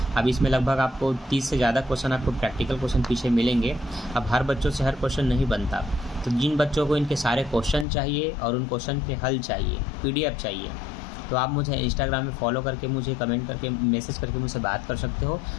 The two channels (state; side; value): drops out; right; at 7.9 s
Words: अब इसमें लगभग आपको 30 से ज़्यादा क्वेश्चन आपको प्रैक्टिकल क्वेश्चन पीछे मिलेंगे। अब हर बच्चों से हर क्वेश्चन नहीं बनता, तो जिन बच्चों को इनके सारे क्वेश्चन चाहिए और उन क्वेश्चन के हल चाहिए, PDF चाहिए, तो आप मुझे इंस्टाग्राम में फॉलो करके मुझे कमेंट करके मैसेज करके मुझसे बात कर सकते हो।